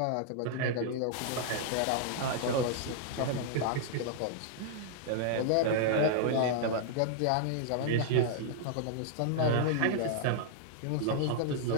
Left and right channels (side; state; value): both; different; correlation -0.01